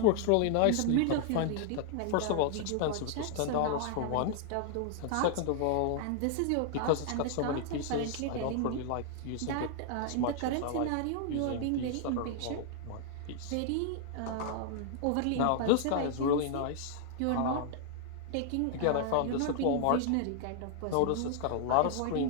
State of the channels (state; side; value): different; both; correlation -0.01